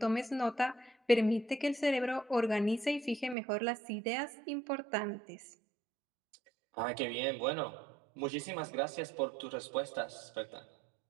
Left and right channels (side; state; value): left; drops out; at 3.4 s